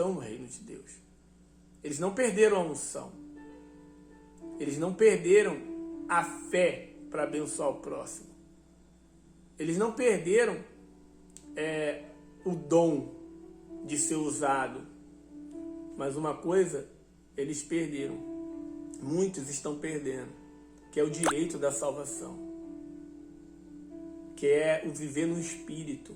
no reino de Deus. Eles não perderam a unção. Eles não perderam a fé para abençoar o próximo. Eles não perderam o dom de ser usado. Mas uma coisa eles perderam. Muitos estão perdendo, que é o direito da salvação, que é o viver no Espírito.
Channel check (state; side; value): identical; both; correlation 1.00